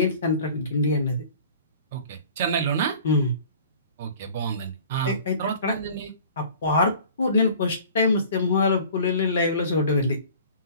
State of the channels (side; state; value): both; inverted; correlation -0.46